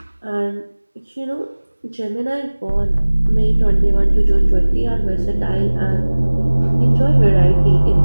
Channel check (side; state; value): both; inverted; correlation -1.00